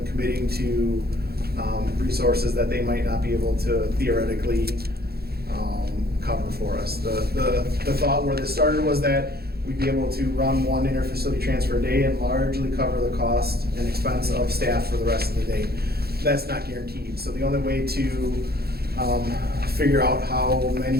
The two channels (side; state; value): left; late; 0.46 ms